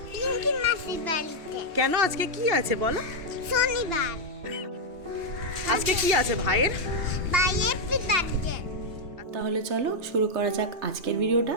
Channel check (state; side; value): late; left; 2.9 ms